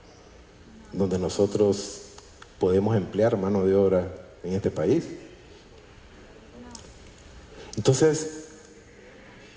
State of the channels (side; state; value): both; identical; correlation 1.00